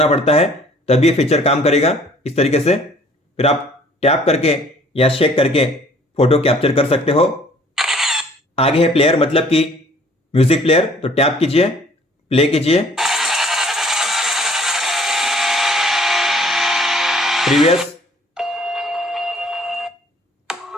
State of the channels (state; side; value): normal; both; correlation 0.56